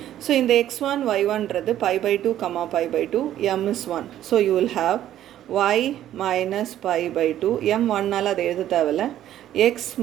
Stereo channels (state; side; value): quieter; left; 12.1 dB